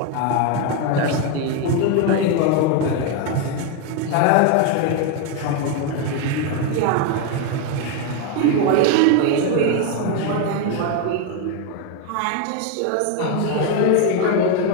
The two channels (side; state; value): both; different; correlation 0.02